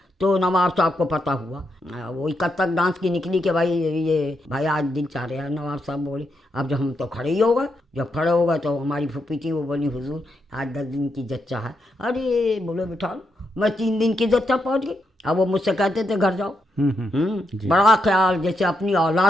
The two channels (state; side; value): normal; both; correlation 0.82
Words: तो नवाब साहब को पता हुआ, वो कथक डांस की निकली कि भाई आज दिल चाह रहा है। नवाब साहब बोले अब जब हम तो खड़े ही हो गए, जब खड़े हो गए तो हमारी फूफी थी, वो बोली हुजूर आज 10 दिन की जच्चा है। अरे बोले बिठा लो, मैं 3 दिन की जच्चा पहुँच गई। अब वो मुझसे कहते थे घर जाओ। बड़ा ख्याल जैसे अपनी